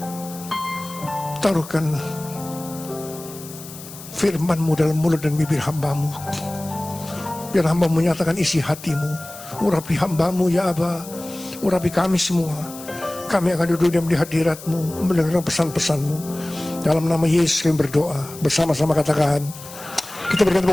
taruhkan firman-Mu dalam mulut dan bibir hamba-Mu. Biar hamba menyatakan isi hati-Mu. Urapi hamba-Mu ya Aba, urapi kami semua. Kami akan duduk diam di hadirat-Mu, mendengarkan pesan-pesan-Mu. Dalam nama Yesus kami berdoa. Bersama-sama katakan, kita berikan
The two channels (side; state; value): left; noise; hiss, 15 dB below the sound